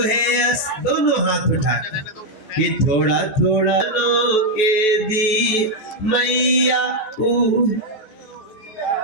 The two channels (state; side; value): late; right; 14 ms